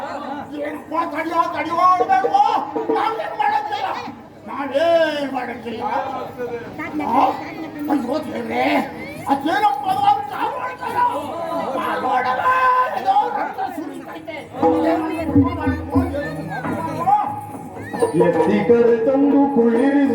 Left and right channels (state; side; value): identical; both; correlation 1.00